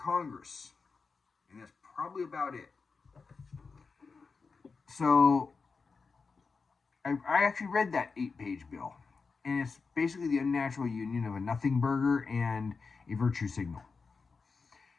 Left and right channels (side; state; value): right; quieter; 4.7 dB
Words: And that's probably about it. So, I actually read that 8-page bill. And it's basically the unnatural union of a nothing burger and a virtue signal.